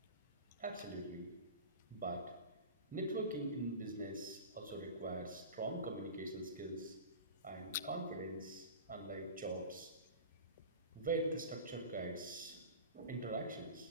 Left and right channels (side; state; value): both; inverted; correlation -0.33